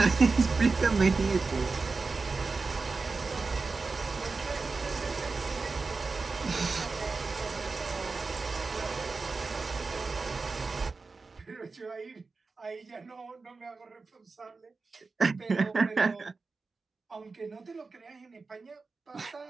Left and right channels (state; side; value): quieter; left; 4.1 dB